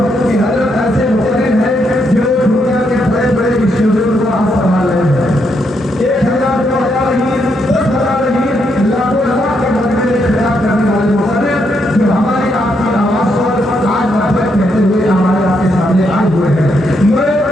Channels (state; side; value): normal; both; correlation 0.78